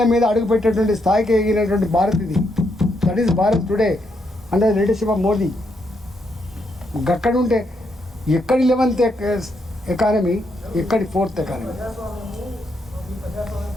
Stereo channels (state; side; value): normal; both; correlation 0.78